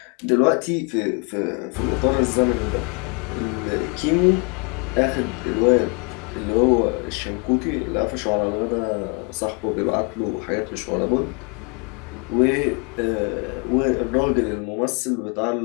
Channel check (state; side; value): quieter; right; 34.7 dB